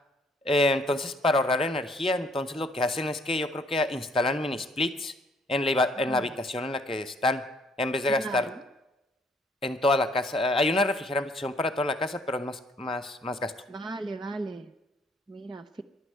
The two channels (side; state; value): both; normal; correlation 0.63